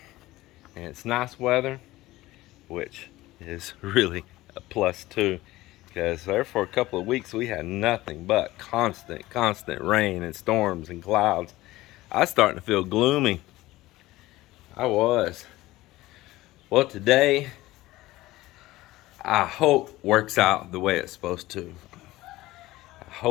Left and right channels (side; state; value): right; quieter; 17.6 dB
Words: and it's nice weather, which is really a plus too, because there for a couple of weeks we had nothing but constant rain and storms and clouds. I was starting to feel gloomy. I was. Well, today I hope works out the way it's supposed to. I